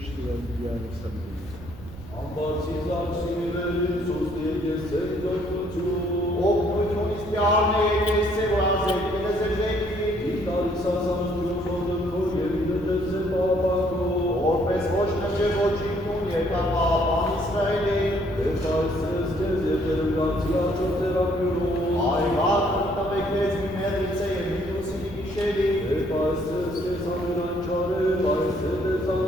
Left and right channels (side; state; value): right; noise; rumble, 16 dB below the sound